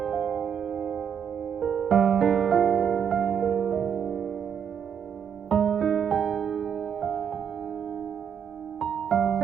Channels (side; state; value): left; quieter; 7.9 dB